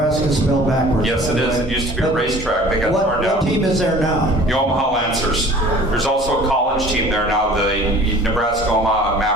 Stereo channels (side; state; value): both; normal; correlation 0.48